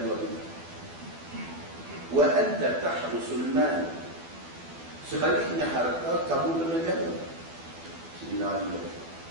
itu. Wa anta tahrusul mal. Sebaliknya harta kamu kena jaga. Sayyidina Ali kata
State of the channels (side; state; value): left; late; 12 ms